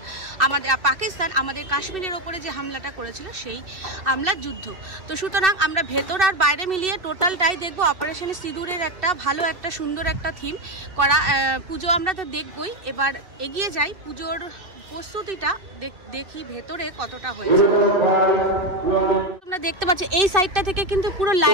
পাকিস্তান আমাদের কাশ্মীরের ওপরে যে হামলাটা করেছিল সেই হামলার যুদ্ধ। তো সুতরাং আমরা ভেতর আর বাইরে মিলিয়ে টোটালটাই দেখবো। অপারেশন সিঁদুরের একটা ভালো একটা সুন্দর একটা থিম করা পুজো আমরা তো দেখবই। এবার এগিয়ে যাই, পুজোর প্রস্তুতিটা দেখি ভেতরে কতটা হয়েছে। তোমরা দেখতে পাচ্ছ এই সাইডটা থেকে কিন্তু পুরো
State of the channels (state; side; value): late; left; 2.7 ms